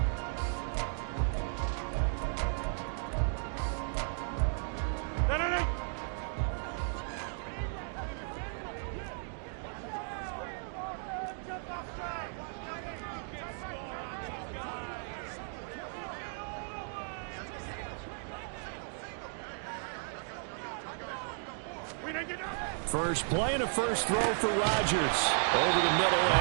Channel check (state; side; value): silent; left; 54 dB below the other